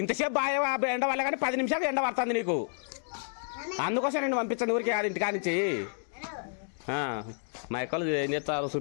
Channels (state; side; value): silent; right; digital silence